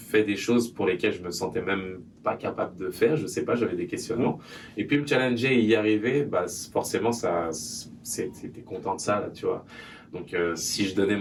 des choses pour lesquelles je me sentais même pas capable de faire, je sais pas, j'avais des questionnements. Et puis me challenger et y arriver, bah forcément t'es content de ça là, tu vois. Donc si je donnais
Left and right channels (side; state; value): both; identical; correlation 1.00